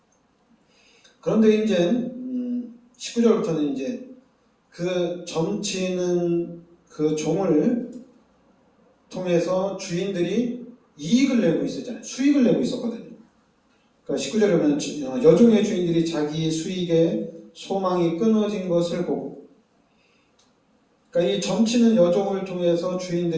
그런데 이제 19절부터는 이제 그 점치는 그 종을 통해서 주인들이 이익을 내고 있었잖아요. 수익을 내고 있었거든요. 그러니까 19절에 보면 여종의 주인들이 자기 수익에 소망이 끊어진 것을 보고, 그러니까 이 점치는 여종을 통해서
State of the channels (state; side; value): identical; both; correlation 1.00